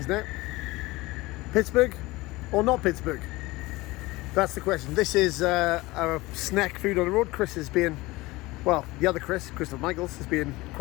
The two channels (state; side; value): quieter; right; 20.7 dB